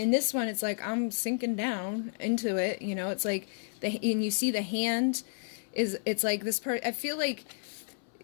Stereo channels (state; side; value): silent; right; 57 dB below the other